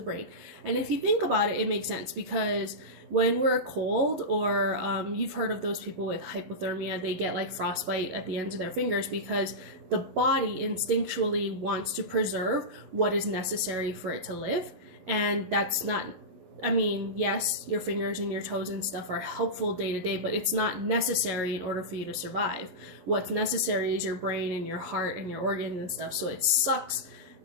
brain. And if you think about it, it makes sense, because when we're cold, or you've heard of those people with hypothermia, they get like frostbite at the ends of their fingers because the body instinctually wants to preserve what is necessary for it to live. And that's not, I mean, yes, your fingers and your toes and stuff are helpful day to day, but it's not necessary in order for you to survive. What's necessary is your brain and your heart and your organs and stuff. So it sucks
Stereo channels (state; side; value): late; left; 11 ms